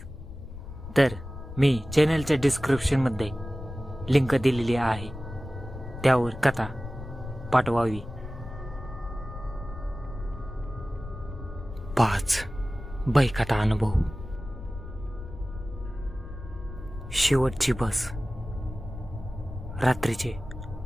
तर मी चॅनलच्या डिस्क्रिप्शनमध्ये लिंक दिलेली आहे, त्यावर कथा पाठवावी. 5 बैकथा अनुभव. शेवटची बस. रात्रीचे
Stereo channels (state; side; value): noise; left; rumble, 11 dB below the sound